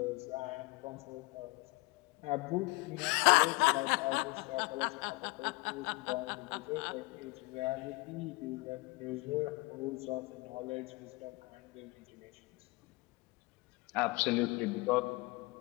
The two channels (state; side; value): quieter; right; 24.4 dB